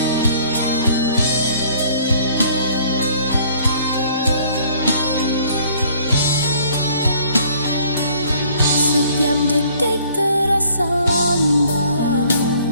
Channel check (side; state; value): both; inverted; correlation -0.57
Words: Setiap detik terasa lambat,